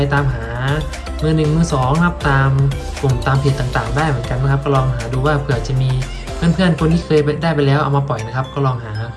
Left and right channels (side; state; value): both; identical; correlation 1.00